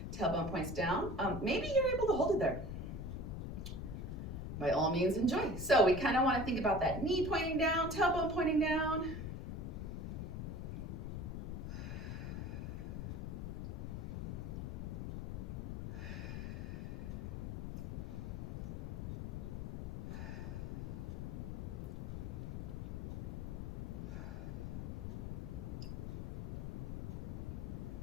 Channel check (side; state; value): left; noise; rumble, 5 dB below the sound